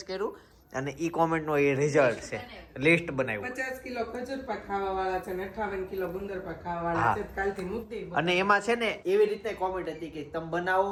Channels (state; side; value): identical; both; correlation 1.00